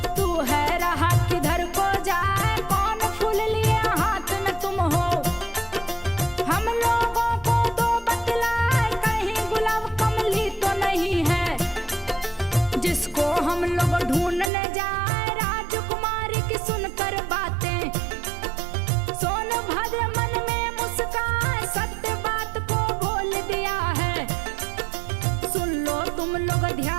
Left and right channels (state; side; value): drops out; left; at 14.5 s